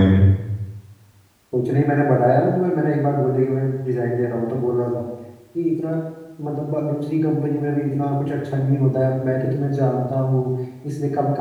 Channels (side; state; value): both; identical; correlation 1.00